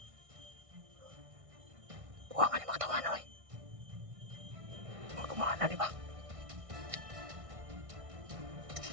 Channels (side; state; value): left; late; 1.6 ms